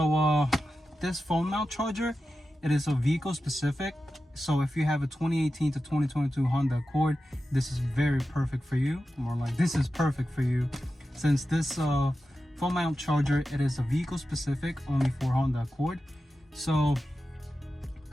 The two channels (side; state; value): both; normal; correlation 0.92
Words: this phone mount charger, it is a vehicle specific. So if you have a 2018 to 2022 Honda Accord, this is very perfect for you. More like, this is perfect for you, since this phone mount charger, it is a vehicle specific, only for Honda Accord. So